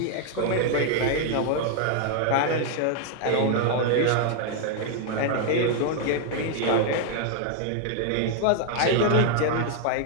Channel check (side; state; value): both; different; correlation 0.00